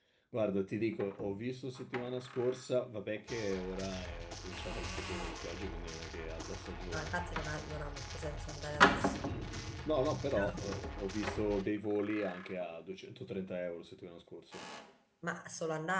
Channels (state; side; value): identical; both; correlation 1.00